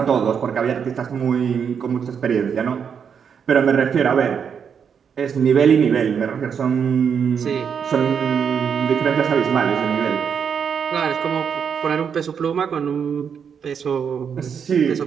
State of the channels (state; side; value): quieter; left; 7.1 dB